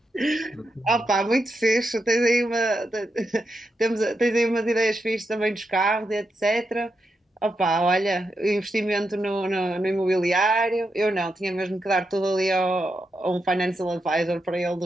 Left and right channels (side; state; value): both; normal; correlation 0.85